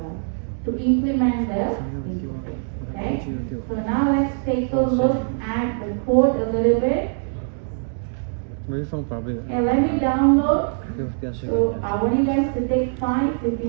to implement the interface. Okay, so now let's take a look at the code a little bit. Okay, let me download. So I want you guys to take 5 if you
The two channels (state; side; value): silent; left; digital silence